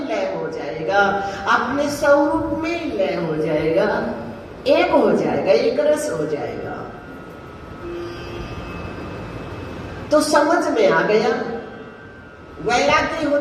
लय हो जाएगा, अपने स्वरूप में लय हो जाएगा, एक हो जाएगा, एक रस हो जाएगा। तो समझ में आ गया। वैराग्य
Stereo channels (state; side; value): identical; both; correlation 1.00